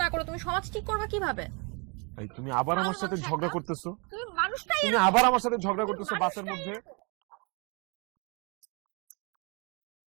না করো, তুমি সমাজ ঠিক করবে কিভাবে? তুমি আবার আমার সাথে ঝগড়া করতেছো, তুমি মানুষটাই তুমি আবার আমার সাথে ঝগড়া করতেছো বাসের মধ্যে।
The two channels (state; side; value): quieter; left; 32.2 dB